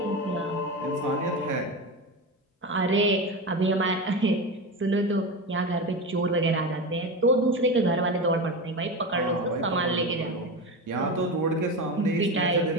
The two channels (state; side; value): normal; both; correlation 0.22